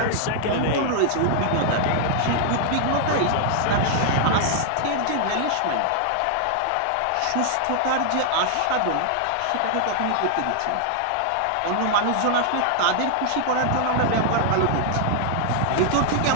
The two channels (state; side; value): different; both; correlation 0.00